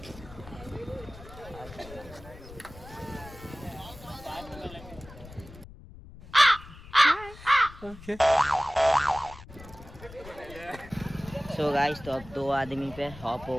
So guys तो अब 2 आदमी पे हॉप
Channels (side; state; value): left; noise; rumble, 17 dB below the sound